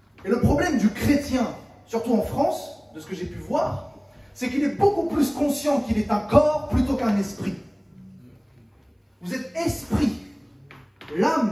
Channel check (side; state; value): both; identical; correlation 1.00